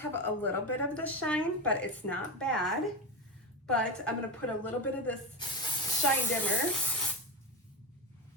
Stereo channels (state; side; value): normal; both; correlation 0.16